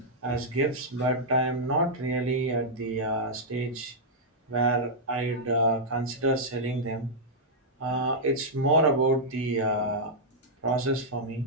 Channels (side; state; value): both; normal; correlation -0.07